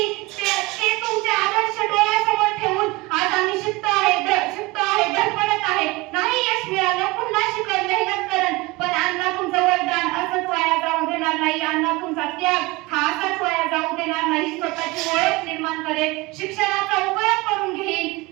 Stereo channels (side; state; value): left; quieter; 22.4 dB